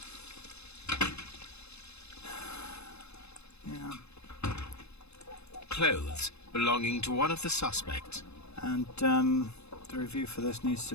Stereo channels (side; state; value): right; late; 0.80 ms